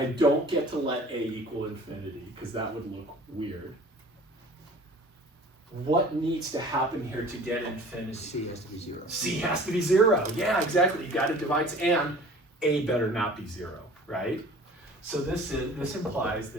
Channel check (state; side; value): normal; both; correlation 0.46